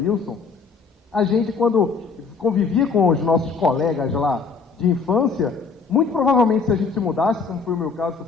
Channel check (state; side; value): quieter; right; 5.0 dB